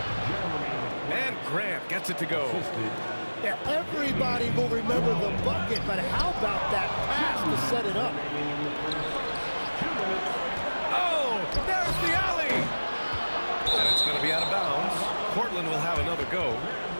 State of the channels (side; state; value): both; inverted; correlation -1.00